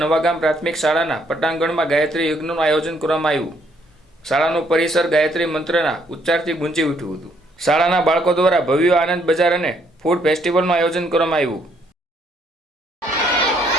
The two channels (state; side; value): normal; both; correlation 0.69